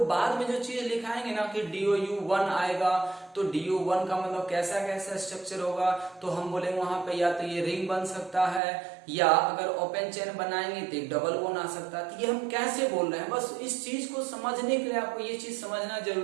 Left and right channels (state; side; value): drops out; left; at 8.6 s